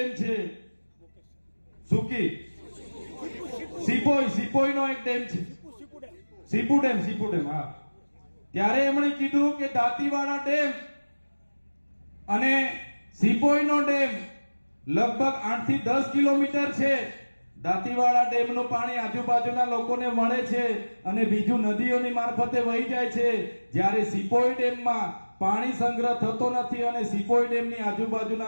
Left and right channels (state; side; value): inverted; both; correlation -1.00